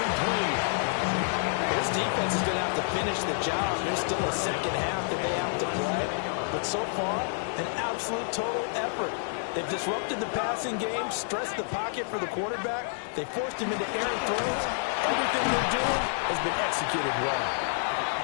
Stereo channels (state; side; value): silent; right; digital silence